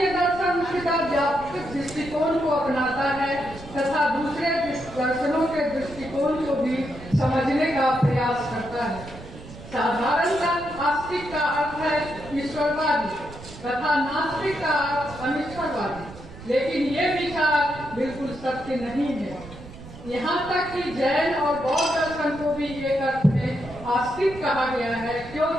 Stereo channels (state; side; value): noise; right; rumble, 15 dB below the sound